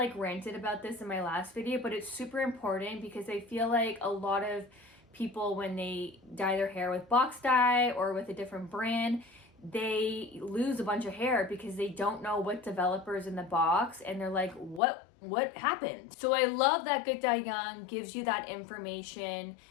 ranted about this in my last video, but it's super important because I feel like a lot of people, when they dye their hair with box dye or with a different brand, they lose a bunch of hair because they don't know what developers in the box, and they're like, what happened? So I love that Good Dye Young gives you that information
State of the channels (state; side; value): drops out; right; at 14.8 s